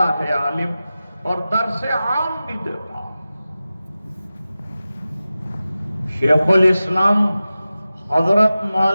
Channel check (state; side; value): inverted; both; correlation -0.95